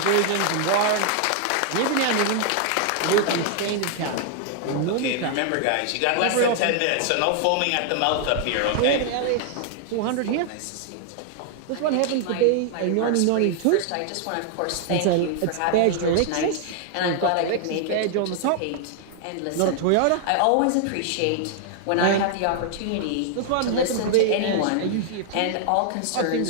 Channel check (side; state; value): both; different; correlation 0.00